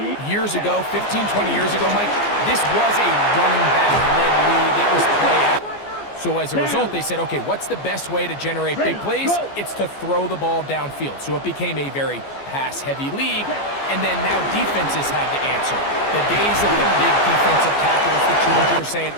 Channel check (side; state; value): right; late; 14 ms